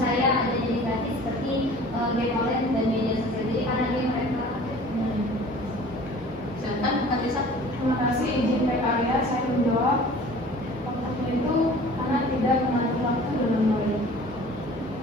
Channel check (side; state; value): both; normal; correlation 0.46